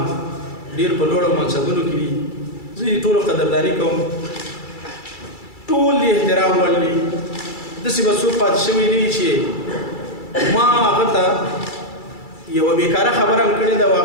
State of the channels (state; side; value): late; right; 2.3 ms